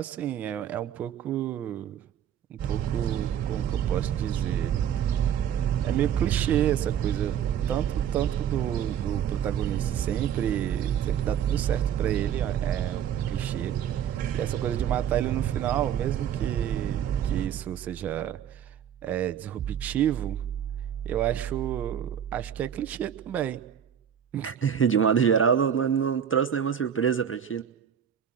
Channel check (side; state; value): left; quieter; 9.1 dB